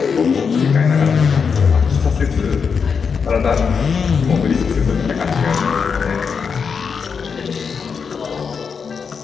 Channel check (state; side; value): quieter; right; 6.0 dB